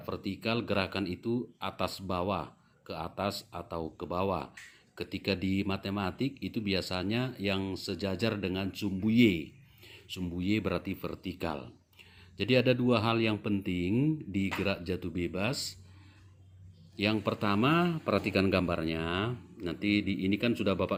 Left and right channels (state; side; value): identical; both; correlation 1.00